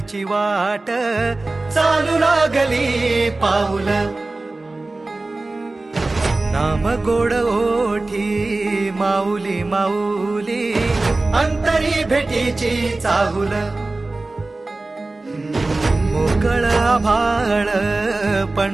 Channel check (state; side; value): quieter; left; 3.1 dB